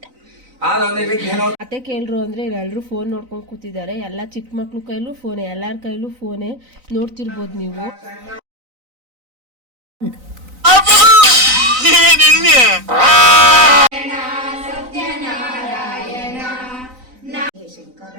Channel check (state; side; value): late; left; 3.9 ms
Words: ಅತ್ತೆ ಕೇಳ್ರು ಅಂದ್ರೆ ಎಲ್ಲರೂ ಫೋನ್ ನೋಡ್ಕೊಂಡು ಕೂತಿದ್ದಾರೆ. ಎಲ್ಲ ಚಿಕ್ಕ ಮಕ್ಳು ಕೈಲೂ ಫೋನೆ, ಎಲ್ಲಾರ ಕೈಲೂ ಫೋನೆ. ನೋಡ್ತಿರ್ಬೋದು ನೀವು.